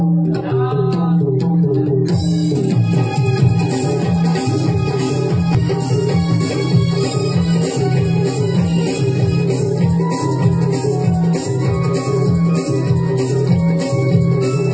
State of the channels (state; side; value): identical; both; correlation 1.00